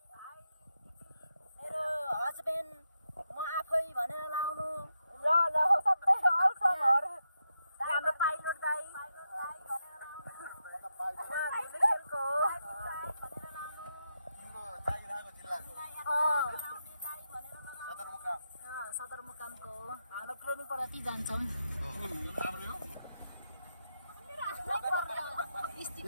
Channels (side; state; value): both; inverted; correlation -0.84